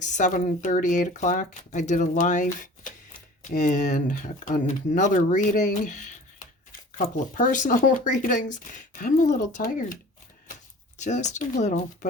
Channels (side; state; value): both; normal; correlation 0.44